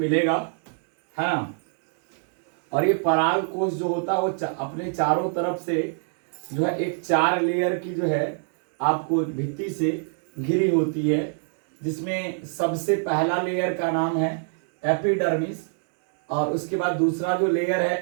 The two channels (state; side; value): silent; left; digital silence